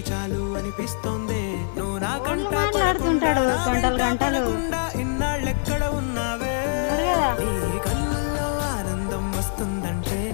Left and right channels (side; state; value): right; silent; digital silence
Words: చాలు అనిపిస్తోంది. నువ్వు నా కంట మాట్లాడుతుంటాడు గంటలు గంటలు. ఇన్నాళ్ళెక్కడ ఉన్నావే? నీ కళ్ళల్లో ఆనందం వస్తుందంటే